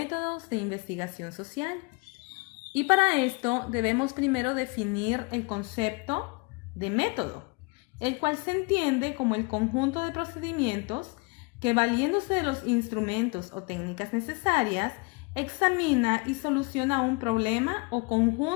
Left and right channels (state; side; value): quieter; right; 30.8 dB